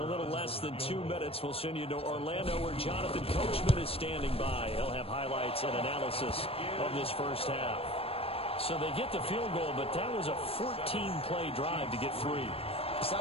a little less than 2 minutes, we'll send you to Orlando where Jonathan Coachman is standing by. He'll have highlights and analysis of this first half. So they get the field goal, but that was a 14-play drive to get 3. It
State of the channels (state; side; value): late; right; 0.28 ms